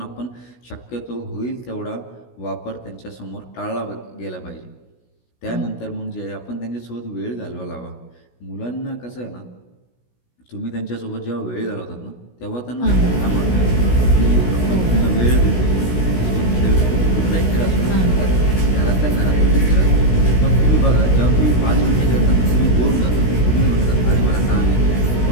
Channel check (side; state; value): right; late; 16 ms